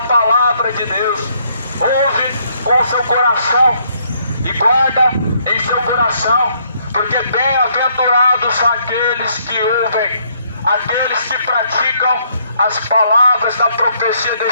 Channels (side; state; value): both; inverted; correlation -0.69